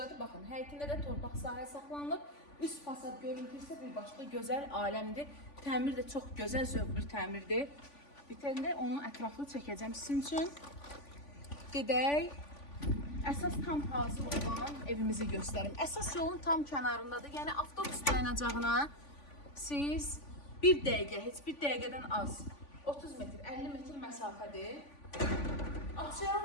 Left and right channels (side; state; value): right; late; 3.5 ms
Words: baxın, həyətində də torpaq sahə saxlanılıb. Üst fasad görüntü isə bir başqa gözəl aləmdir. Təmir də çox gözəl, zövq bir təmirdir. Bitəndə onu ətraflı çəkəcəm sizin üçün. Gedək. Əsas tam hazır olan evimizi göstərim. Əsas yolun tam kənarındadır. Yəni avtobus dayanacağına siz 1 dəqiqə, heç 1 dəqiqədən az 30 metr, 50 metr məsafədir. Abşeron